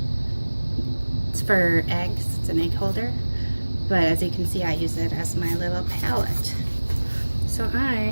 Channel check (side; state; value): both; inverted; correlation -1.00